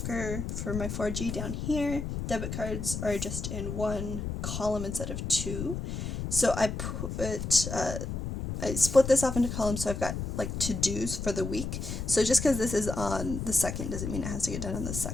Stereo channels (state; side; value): noise; left; rumble, 4 dB below the sound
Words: for my 4G down here. Debit cards are just in 1 column instead of 2. So I split this off into columns, so I've got like to-dos for the week. So just because this is on the 2nd doesn't mean it has to get done on the